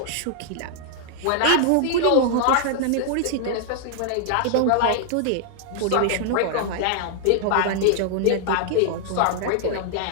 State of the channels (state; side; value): different; both; correlation 0.00